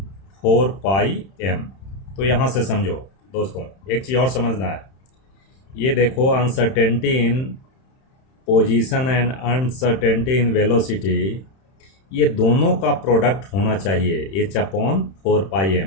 4πm, तो यहाँ से समझो दोस्तों एक चीज़ और समझना है। ये देखो uncertainty in position and uncertainty in velocity, ये दोनों का प्रोडक्ट होना चाहिए h अपॉन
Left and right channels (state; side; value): late; right; 31 ms